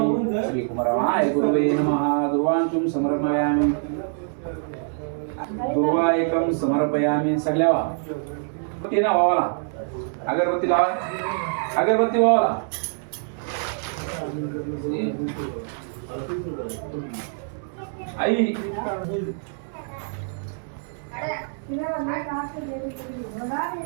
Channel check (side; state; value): left; silent; digital silence